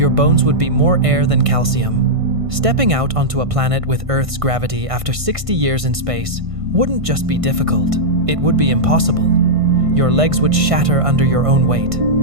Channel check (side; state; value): left; late; 1.5 ms